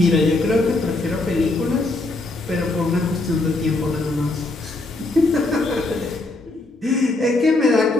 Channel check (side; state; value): right; quieter; 3.0 dB